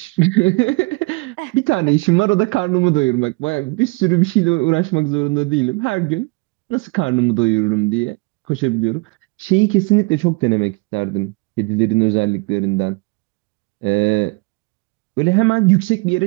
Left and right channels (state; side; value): quieter; left; 27.1 dB